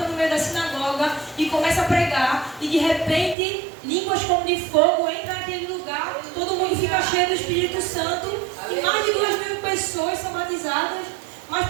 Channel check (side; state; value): left; drops out; at 3.4 s